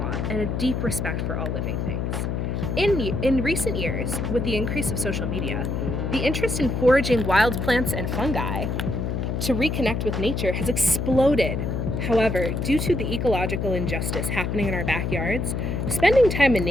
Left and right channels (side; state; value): left; noise; hum, 1 dB below the sound